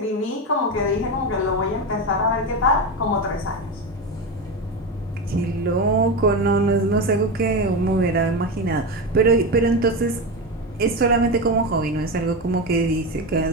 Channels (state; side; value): normal; both; correlation 0.17